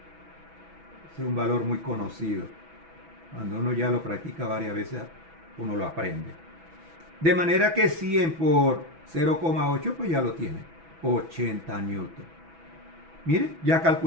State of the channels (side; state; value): left; late; 6.1 ms